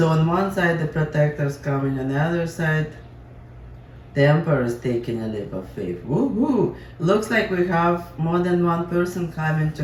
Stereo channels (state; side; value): identical; both; correlation 1.00